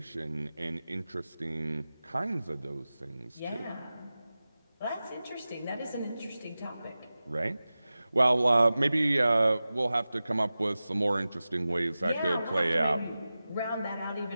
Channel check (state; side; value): inverted; both; correlation -0.95